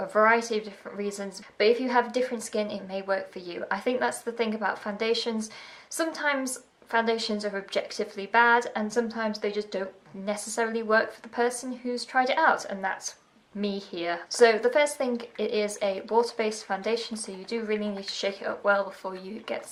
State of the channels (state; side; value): identical; both; correlation 1.00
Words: variety of different reasons, but if you have different skin, it may work for you. I think that's the thing about foundations. Sometimes foundations are objectively bad and sometimes they just don't necessarily work for the person who's tried it out, and that's me here. So the first thing, it is a water-based foundation, so you do really need to shake it up well before you get